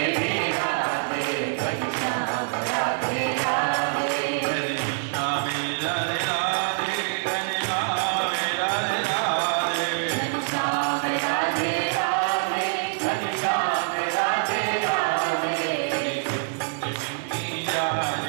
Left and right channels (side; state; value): left; silent; 62 dB below the other